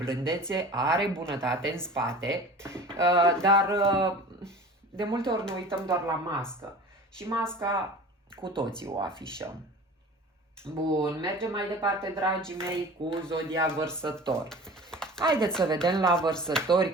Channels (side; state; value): both; normal; correlation 0.40